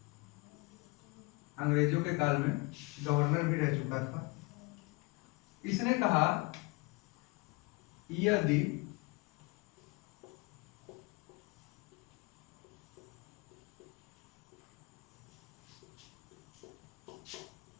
अंग्रेजों के काल में गवर्नर भी रह चुका था। इसने कहा यदि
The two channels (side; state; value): right; quieter; 26.0 dB